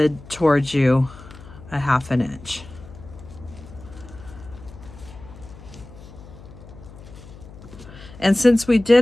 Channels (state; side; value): noise; left; hum, 18 dB below the sound